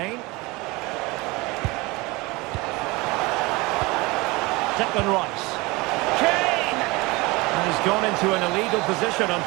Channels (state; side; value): quieter; left; 23.6 dB